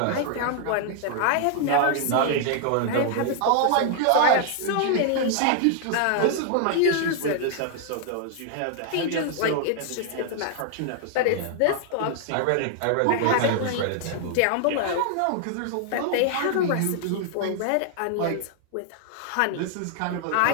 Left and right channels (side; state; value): both; different; correlation 0.00